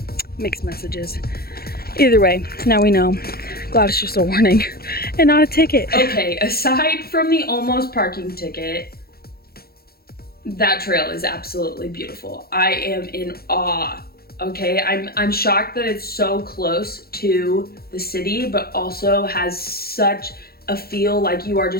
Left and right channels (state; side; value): late; right; 0.45 ms